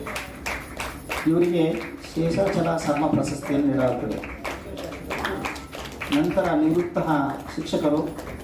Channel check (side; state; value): both; identical; correlation 1.00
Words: ಇವರಿಗೆ ಶೇಷಾಚಲ ಶರ್ಮ ಪ್ರಶಸ್ತಿಯನ್ನು ನೀಡಲಾಗುತ್ತದೆ. ನಂತರ ನಿವೃತ್ತ ಶಿಕ್ಷಕರು